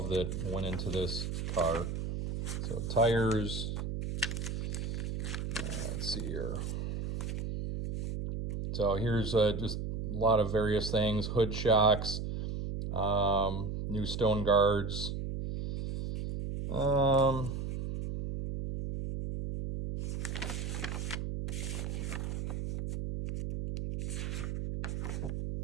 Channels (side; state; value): right; noise; hum, 3 dB below the sound